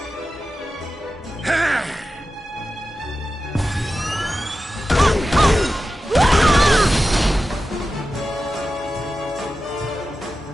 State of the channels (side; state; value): both; normal; correlation 0.92